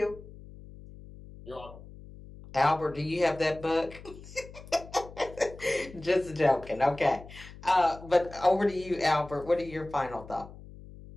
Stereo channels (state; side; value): noise; left; hum, 17 dB below the sound